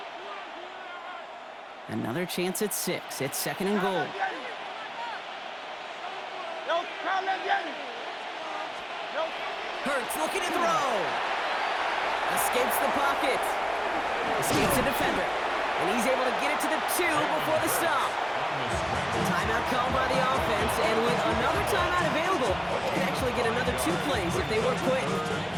Another chance at 6. It's second and goal. Hurts looking to throw. Escapes the pocket. Escapes the defender. And he's able to get it to the 2 before the stop. Timeout called by the offense, and with another timeout available, they can actually get another 2 plays if they work quick.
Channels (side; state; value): both; identical; correlation 1.00